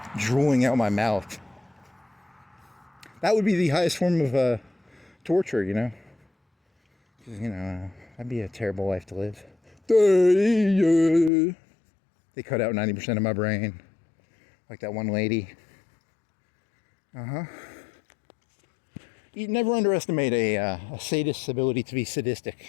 drooling out my mouth. That would be the highest form of torture, you know? Because, you know, that'd be a terrible life to live. They cut out 90% of my brain. Like that one lady. You never underestimate a sadist's ability to be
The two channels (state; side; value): drops out; right; at 11.3 s